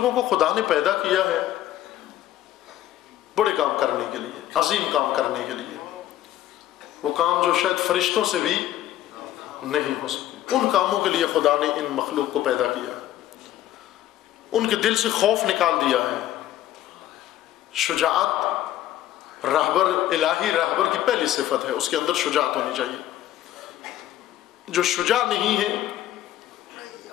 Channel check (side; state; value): right; quieter; 13.1 dB